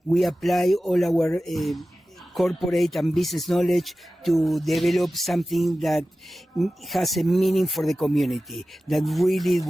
we apply all our corporate and business knowledge to develop something that has a meaning for the community, that really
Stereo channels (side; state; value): both; normal; correlation 0.95